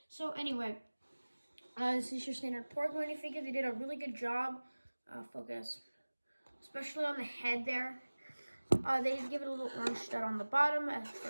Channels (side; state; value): both; inverted; correlation -1.00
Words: So anyway, this is your standard Porg minifigure. They did a really good job. Focus. Especially on the head there. They did give it a little orange stud on the bottom